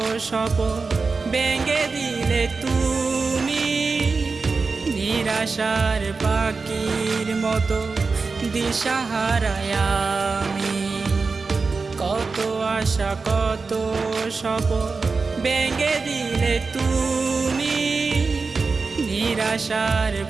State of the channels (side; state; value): left; quieter; 4.3 dB